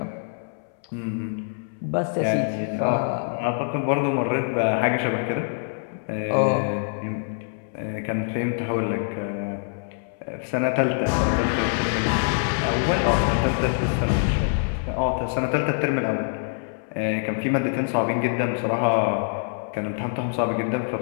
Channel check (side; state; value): right; silent; 62 dB below the other